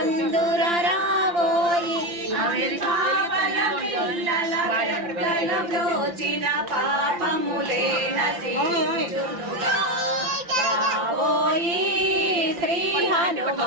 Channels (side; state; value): left; late; 5.8 ms